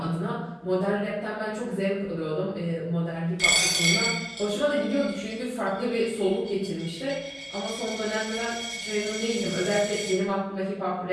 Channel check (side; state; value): both; identical; correlation 1.00